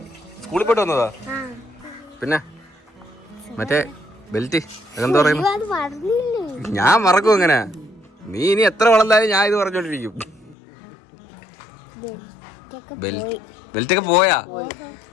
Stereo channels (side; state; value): right; drops out; at 10.6 s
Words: സ്കൂളിൽ പോയിട്ട് വന്നതാ. പിന്നെ മറ്റേ ബെൽറ്റ് അതെന്താ പറയുന്നു? ഞാൻ മറക്കും അങ്ങനെ. നീ ഇനി എത്ര വളർന്നാലും ഞാൻ ഇത് പറഞ്ഞോണ്ടിരിക്കും. ബെൽറ്റൊക്കെ പോയാ?